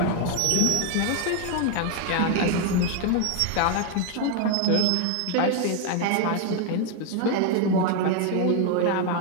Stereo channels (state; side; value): different; both; correlation 0.01